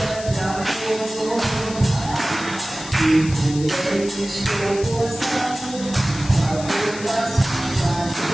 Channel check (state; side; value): noise; left; hiss, 13 dB below the sound